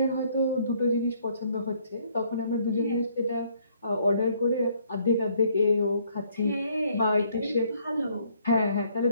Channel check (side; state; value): both; inverted; correlation -0.66